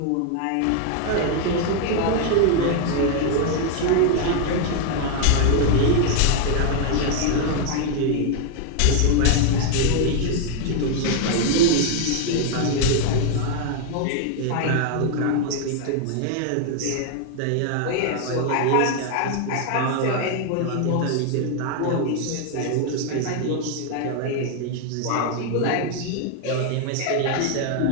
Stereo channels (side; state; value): both; different; correlation 0.00